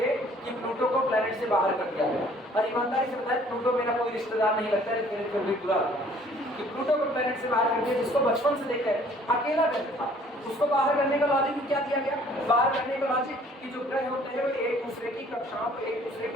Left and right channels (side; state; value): both; normal; correlation 0.56